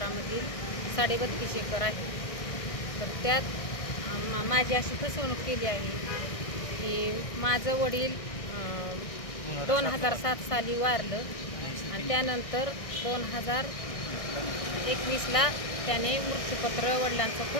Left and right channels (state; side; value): late; right; 1.6 ms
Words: 32.5 एकर आहे। तर त्यात माझी अशी फसवणूक केली आहे की माझं वडील 2007 साली वारलं आणि त्यानंतर 2021ला त्याने मृत्यूपत्र, वडिलांचं